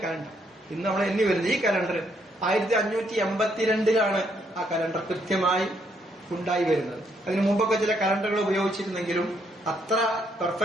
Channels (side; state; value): both; normal; correlation 0.73